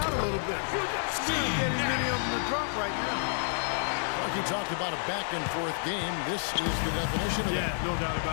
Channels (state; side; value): silent; right; digital silence